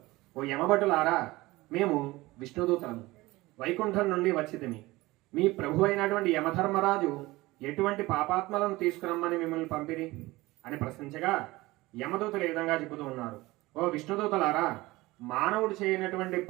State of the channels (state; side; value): quieter; left; 20.0 dB